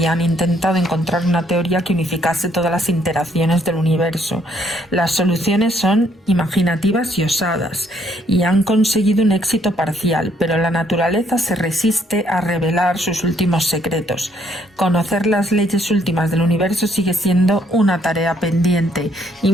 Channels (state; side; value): normal; both; correlation 0.68